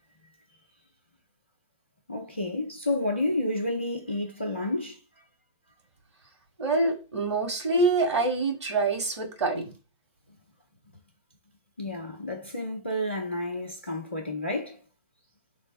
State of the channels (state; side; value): inverted; both; correlation -0.35